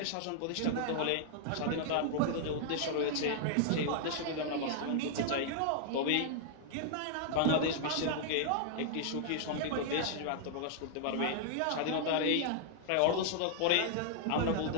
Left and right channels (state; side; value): different; both; correlation -0.01